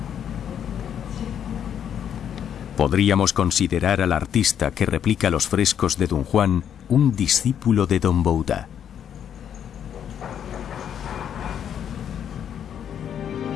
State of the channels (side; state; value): right; quieter; 9.0 dB